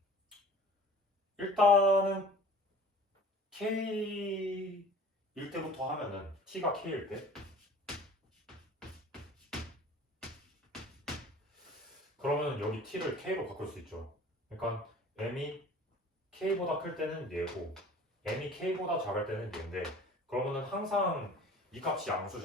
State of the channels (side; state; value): both; normal; correlation 0.45